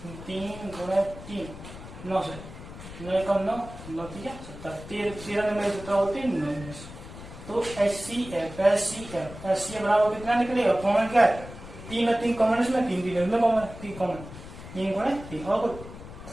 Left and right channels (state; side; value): noise; left; rumble, 14 dB below the sound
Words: 3 गुणा 3 9 से 9 कम 9 9 3 17, 13 में 17 होते हैं 19। तो HCF बराबर कितना निकलेगा, कॉमन क्या है 3 और 3 कॉमन, इसमें 3 3 कॉमन 3 कॉमन 3 गुणा 3